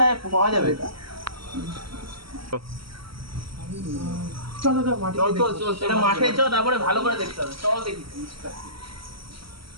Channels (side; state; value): left; late; 0.75 ms